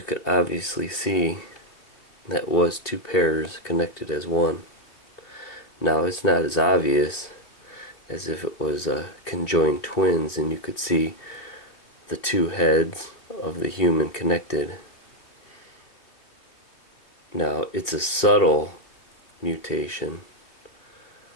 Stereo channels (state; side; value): late; right; 2.9 ms